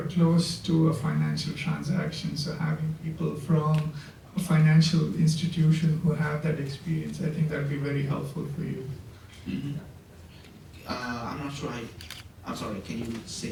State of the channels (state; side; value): identical; both; correlation 1.00